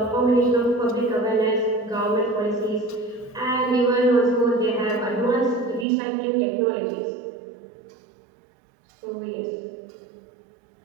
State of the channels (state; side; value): drops out; left; at 5.9 s